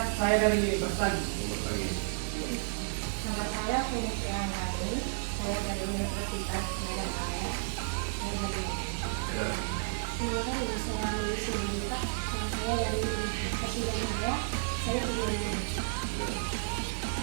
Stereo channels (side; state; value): left; silent; digital silence